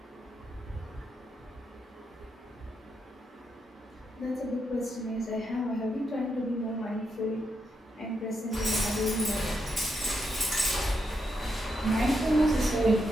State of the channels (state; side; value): normal; both; correlation 0.82